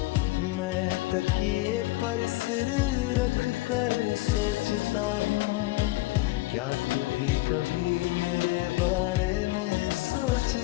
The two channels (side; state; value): right; quieter; 20.0 dB